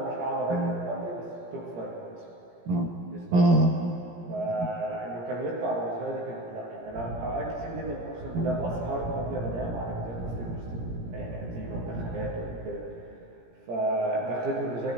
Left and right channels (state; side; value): late; left; 17 ms